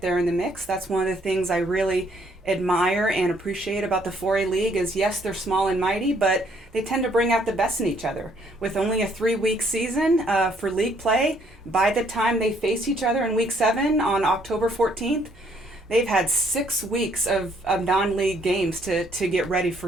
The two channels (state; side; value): normal; both; correlation 0.66